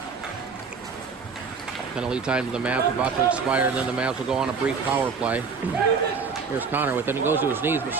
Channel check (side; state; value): left; quieter; 5.4 dB